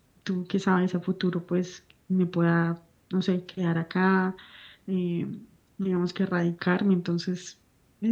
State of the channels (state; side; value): identical; both; correlation 1.00